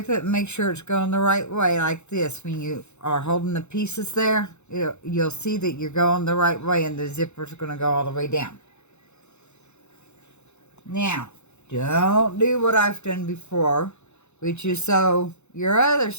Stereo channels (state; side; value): late; right; 0.82 ms